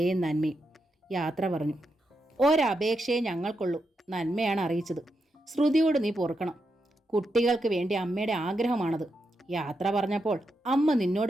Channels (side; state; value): both; normal; correlation 0.85